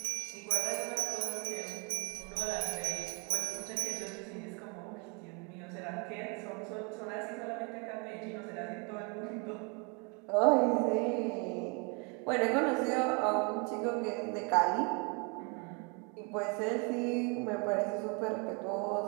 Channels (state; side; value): quieter; left; 33.3 dB